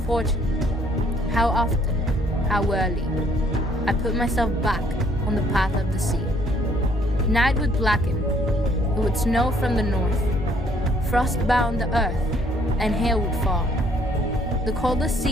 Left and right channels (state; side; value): normal; both; correlation 0.64